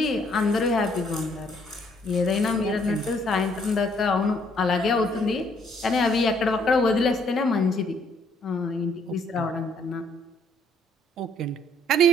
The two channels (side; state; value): both; normal; correlation 0.66